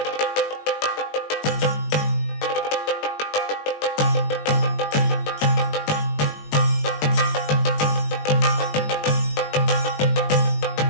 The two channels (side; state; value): right; late; 20 ms